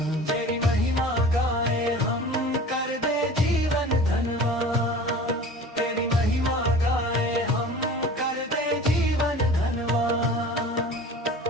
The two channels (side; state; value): both; normal; correlation 0.40